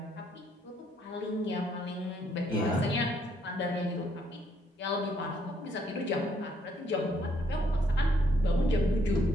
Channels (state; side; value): normal; both; correlation 0.70